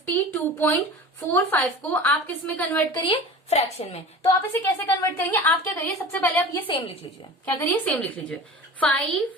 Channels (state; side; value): normal; both; correlation 0.37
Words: को आप किस में कन्वर्ट करिए? फ्रैक्शन में। तो आप इसे कैसे कन्वर्ट करेंगे? आप क्या करिए, सबसे पहले आप ये सेम लिख लीजिए। क्या करिए? सेम लिख लीजिए।